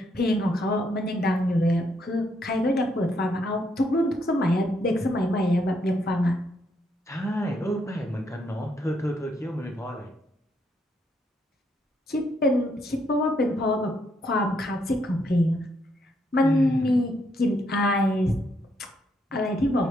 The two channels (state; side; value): normal; both; correlation 0.75